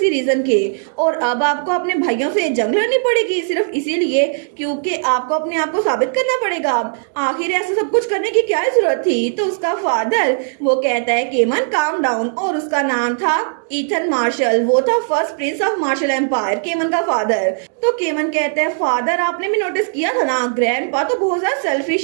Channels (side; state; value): left; silent; digital silence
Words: रीजन के और अब आपको अपने भाइयों से जंग लड़नी पड़ेगी सिर्फ इसीलिए क्योंकि आपको अपने आप को साबित करना पड़ेगा। आखिर ऐसा सब कुछ करने की क्या जरूरत थी। तो उसका फादर वो कहता है केमन काम डाउन, और उसका नाम था ईथन मार्शल। वो था first prince of Marshall empire, केमन का फादर। तो केमन कहता है फादर आपने भी नोटिस किया था ना, ग्रैंडपा तो बहुत ज्यादा सेल्फिश